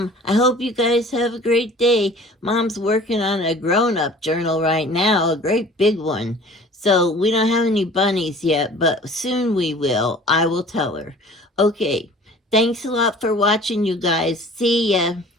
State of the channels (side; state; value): both; normal; correlation 0.47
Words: I hope you guys have a great day. Mom's working on a grown-up journal right now, a great big one. So we don't have any bunnies yet, but soon we will. I will tell her. Okay, thanks a lot for watching, you guys. See ya.